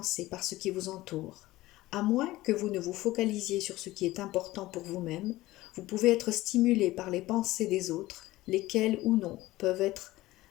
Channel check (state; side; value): quieter; right; 17.6 dB